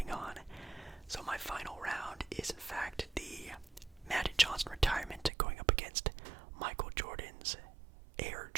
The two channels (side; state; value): left; drops out; at 5.3 s